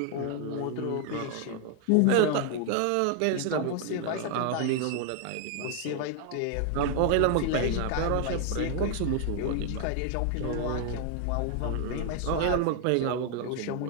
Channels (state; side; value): different; both; correlation 0.00